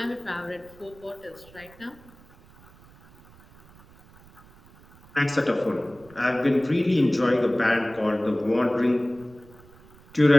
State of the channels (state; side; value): noise; right; rumble, 25 dB below the sound